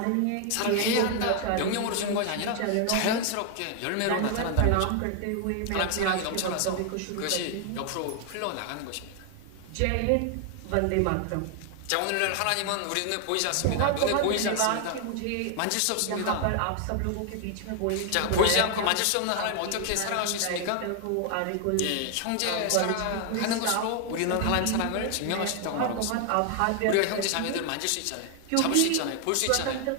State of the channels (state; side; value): different; both; correlation 0.00